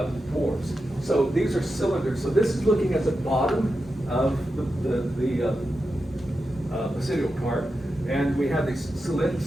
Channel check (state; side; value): normal; both; correlation 0.90